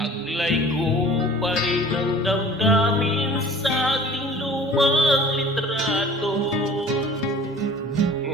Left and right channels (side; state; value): both; normal; correlation 0.45